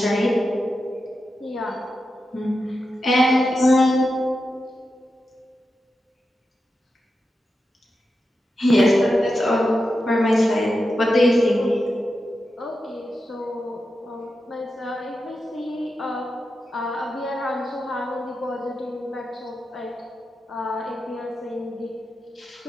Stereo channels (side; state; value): both; normal; correlation 0.89